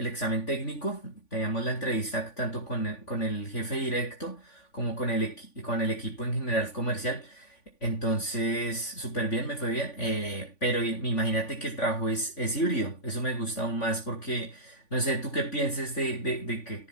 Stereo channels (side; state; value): right; late; 3.5 ms